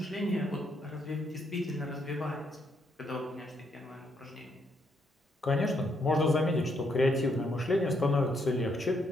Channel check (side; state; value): both; normal; correlation 0.75